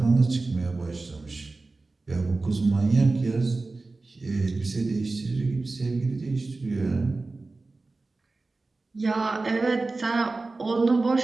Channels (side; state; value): left; quieter; 3.5 dB